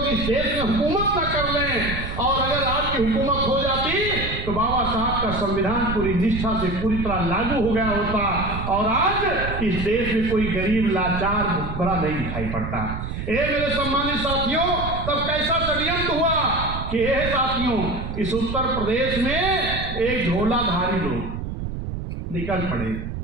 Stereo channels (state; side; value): noise; right; rumble, 6 dB below the sound